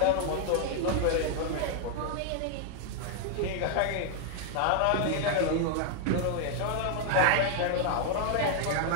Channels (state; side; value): different; both; correlation 0.00